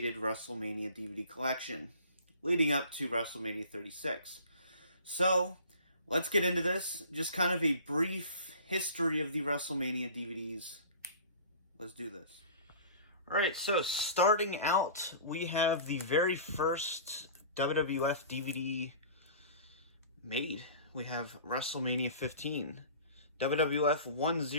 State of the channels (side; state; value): both; inverted; correlation -0.43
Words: Wrestlemania DVD collection leading up to Wrestlemania 36. So, let's get into this. Just kind of a brief history of the Wrestlemania DVDs. Let's do this. Alright, so starting out, we have the very first WWF DVD made. We have WrestleMania 15, WWF